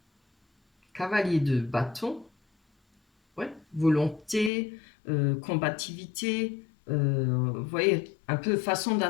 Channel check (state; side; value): drops out; right; at 4.5 s